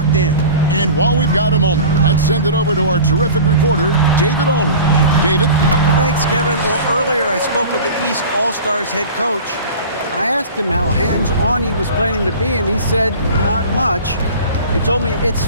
in. And while we've got a moment, let's send it over to our terrific reporter, David Aldridge. David? Thanks, Kevin. Well, earlier I spoke with the East All-Stars head coach. I asked him how hands-on he was planning to be, and he said not much. He told me it's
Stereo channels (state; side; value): inverted; both; correlation -0.38